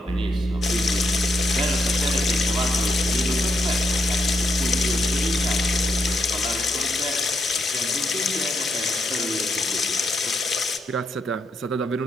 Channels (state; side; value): normal; both; correlation 0.79